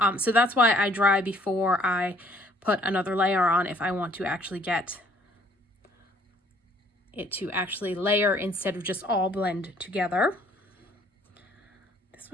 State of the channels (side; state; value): both; normal; correlation 0.60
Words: So that's why I dry before I put another layer on, if I want to actually get it to actually layer instead of just all blend together. This